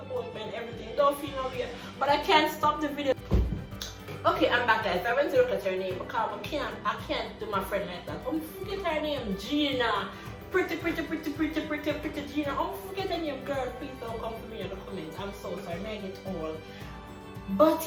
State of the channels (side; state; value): both; identical; correlation 1.00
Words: me and everything. Don't feel no weird, but I can't stop the video. Okay, I'm back, guys. I went to look at her name because I can't do my friend like that. Forget her name, Gina. Pretty Gina. Forget her name, girl. Please don't come to me in the comments. I'm so sorry, I get all. But